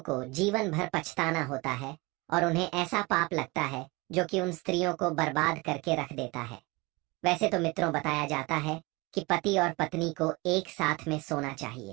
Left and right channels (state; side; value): quieter; left; 24.6 dB